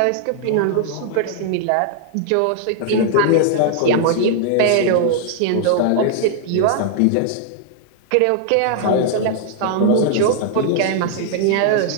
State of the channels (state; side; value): different; both; correlation -0.01